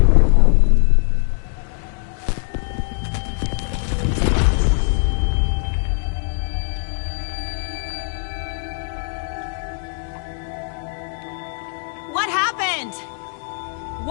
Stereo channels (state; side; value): silent; right; digital silence